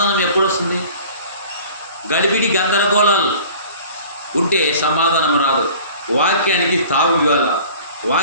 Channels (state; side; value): inverted; both; correlation -0.45